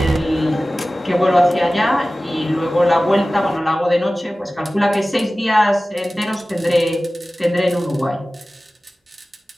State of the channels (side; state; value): both; normal; correlation 0.97